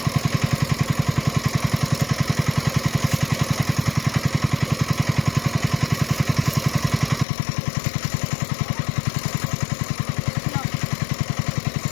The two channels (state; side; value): drops out; right; at 7.2 s